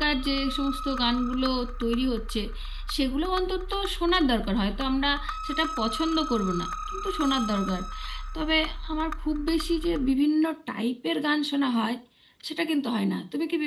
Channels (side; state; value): both; identical; correlation 1.00